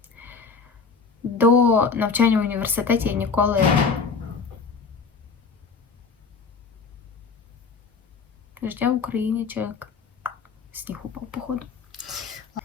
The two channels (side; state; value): right; quieter; 5.1 dB